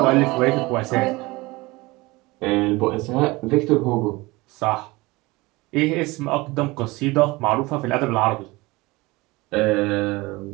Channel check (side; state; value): left; quieter; 22.2 dB